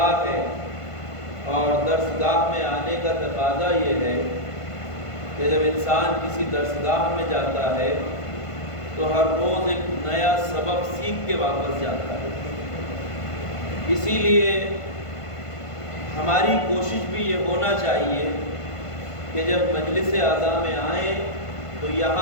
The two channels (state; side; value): late; right; 1.5 ms